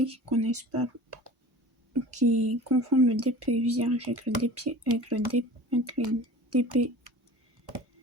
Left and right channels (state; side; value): normal; both; correlation 0.40